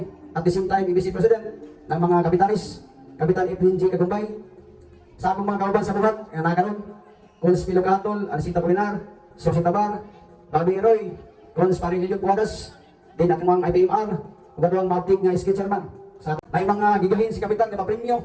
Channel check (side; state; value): both; identical; correlation 1.00